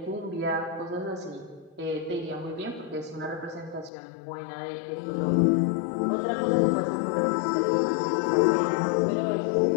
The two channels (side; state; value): right; drops out; at 3.9 s